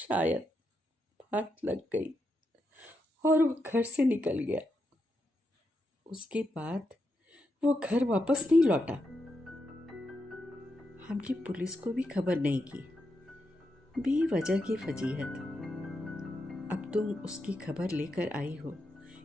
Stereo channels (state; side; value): normal; both; correlation 0.84